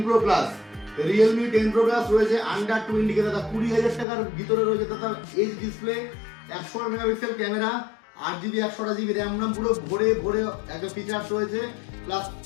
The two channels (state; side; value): drops out; right; at 4.0 s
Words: Pro plus, Realme 10 Pro plus রয়েছে আন্ডার 20 কে দাদা 20,000 টাকার ভিতরে রয়েছে দাদা। H display, 100 megapixel camera, 8GB 128GB RAM নাম পুরো ভরে ভরে একটা ফিচার্স রয়েছে, প্লাস